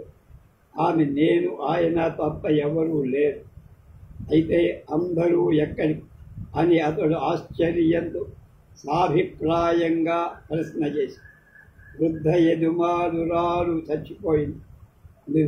ఆమె నేను ఆయన తప్ప ఎవరూ లేరు, అయితే అందరూ ఎక్కడికి అని అతడు ఆశ్చర్యంతో సాభిప్రాయంగా ప్రశ్న చేసి, వృద్ధ యజమానురాలు చచ్చిపోయింది,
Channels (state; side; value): identical; both; correlation 1.00